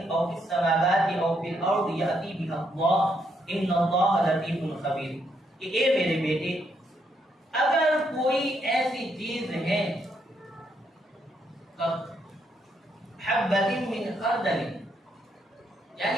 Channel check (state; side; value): normal; both; correlation 0.76